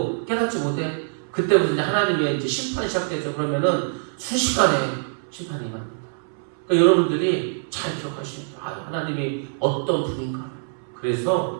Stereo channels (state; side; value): silent; left; 63 dB below the other